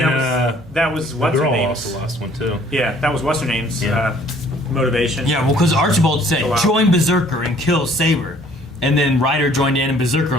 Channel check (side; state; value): both; normal; correlation 0.58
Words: that was what's her name's. also lost one too. Yeah, that was what's her name's motivation. Yeah, well, because Archibald said, join Berserker and kill Saber. And then Ryder joined in and Berserker